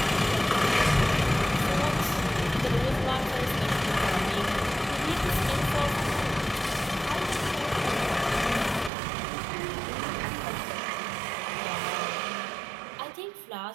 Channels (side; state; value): left; drops out; at 8.9 s